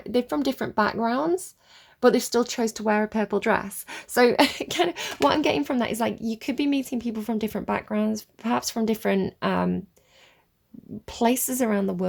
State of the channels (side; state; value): both; identical; correlation 1.00